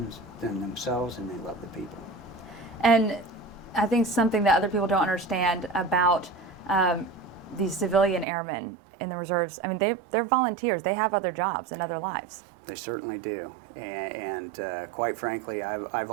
themselves, and they love the people. And I think something that other people don't understand about these civilian airmen in the reserves, I mean, they're volunteers. They have other jobs and other lives. They certainly do. And quite frankly, I've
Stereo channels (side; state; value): left; drops out; at 8.2 s